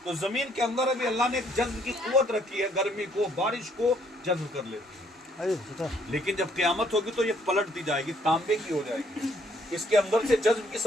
तो जमीन के अंदर अभी अल्लाह ने एक जज्ब की कुव्वत रखी है, गर्मी को बारिश को जज्ब कर लेती है। लेकिन जब क़यामत होगी तो ये पलटती जाएगी, तांबे की हो जाएगी, इसके अंदर से जज्ब की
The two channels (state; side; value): normal; both; correlation 0.66